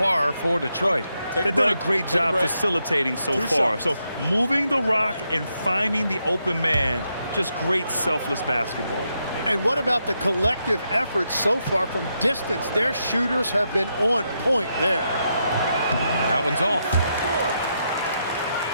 for Detroit? They've done a great job facilitating so far. So moving the rock and finding the open man, just great selfless basketball. And what about the collective effort so far from distance? Their shooters have been on point there. That one's off.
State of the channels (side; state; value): both; inverted; correlation -0.82